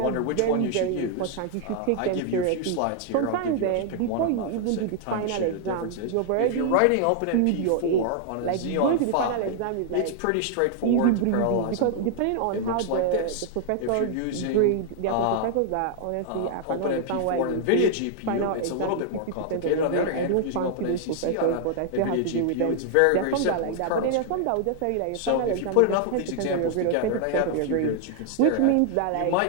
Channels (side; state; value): both; different; correlation 0.00